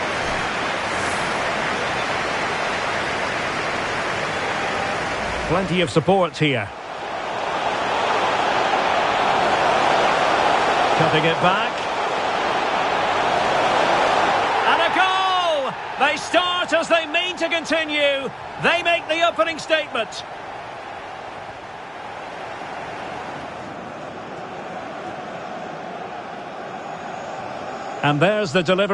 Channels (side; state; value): both; identical; correlation 1.00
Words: Plenty of support here. Cutting it back. And a goal! They start as they mean to continue. They make the opening statement. And there's the